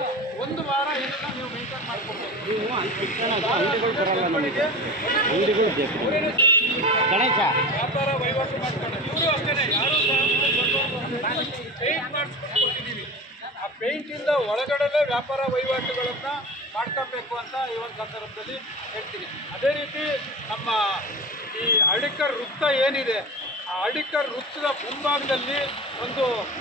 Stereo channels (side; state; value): both; normal; correlation 0.31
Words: ಒಂದು ವಾರ ಇದನ್ನ ನೀವು ಮೇಂಟೈನ್ ಮಾಡ್ಕೊಬೇಕು. ಗಣೇಶ ವ್ಯಾಪಾರ ವಹಿವಾಟು ಮಾಡ್ಕೊಂಡು ಇವರು ಅಷ್ಟೇ ಯಾರು ಪೇಂಟ್ ಮಾಡಿಸ್ಕೊಟ್ಟಿದ್ದೀವಿ. ಆ ಪೇಂಟಿಂದ ಒಳಗಡೆ ವ್ಯಾಪಾರ ವಹಿವಾಟುಗಳನ್ನು ಮಾಡ್ಕೊಬೇಕು ಅಂತ ಈ ಒಂದು ಸಂದರ್ಭದಲ್ಲಿ ಹೇಳ್ತೀನಿ. ಅದೇ ರೀತಿ ನಮ್ಮ ಈ ಹಳ್ಳಿಕರ್ ವೃತ್ತ ಏನಿದೆ, ಆ ಹಳ್ಳಿಕರ್ ವೃತ್ತದ ಮುಂಭಾಗದಲ್ಲಿ ಒಂದು